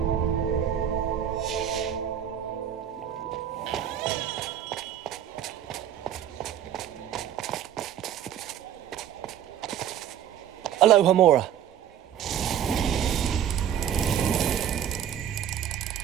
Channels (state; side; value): quieter; left; 9.8 dB